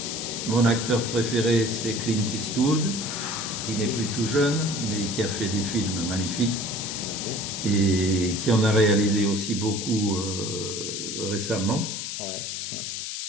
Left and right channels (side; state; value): left; noise; hiss, 5 dB below the sound